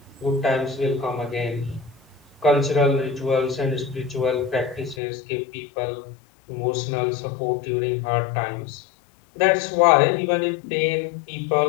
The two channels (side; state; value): right; drops out; at 5.0 s